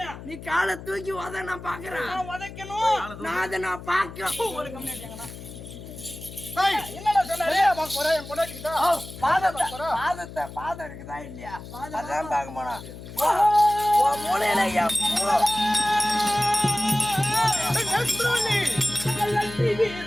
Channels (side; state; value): left; noise; hum, 13 dB below the sound